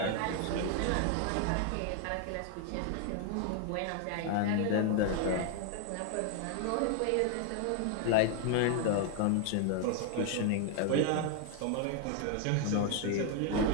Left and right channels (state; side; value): different; both; correlation 0.00